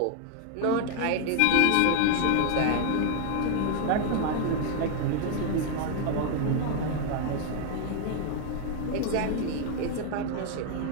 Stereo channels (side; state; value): both; different; correlation 0.01